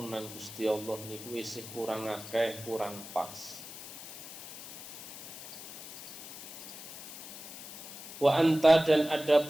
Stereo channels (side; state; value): left; noise; hiss, 12 dB below the sound